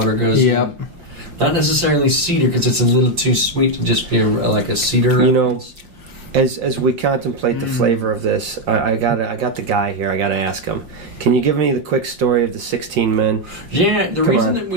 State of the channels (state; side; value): late; left; 5.7 ms